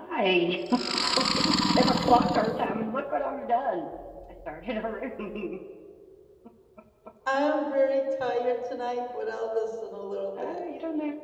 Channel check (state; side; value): identical; both; correlation 1.00